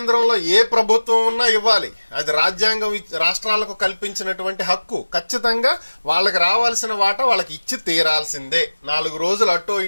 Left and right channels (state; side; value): inverted; both; correlation -1.00